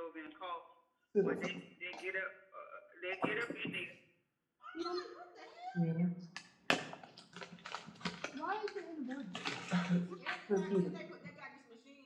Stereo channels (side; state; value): both; identical; correlation 1.00